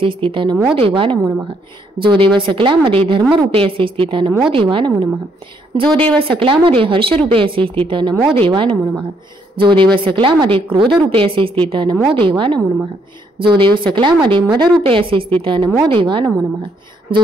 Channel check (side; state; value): both; normal; correlation 0.71